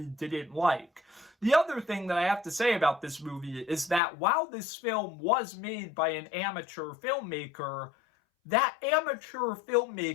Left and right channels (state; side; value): drops out; right; at 4.0 s